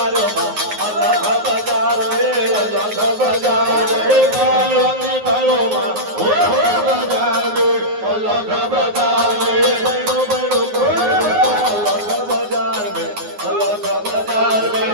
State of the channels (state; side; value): late; left; 9.5 ms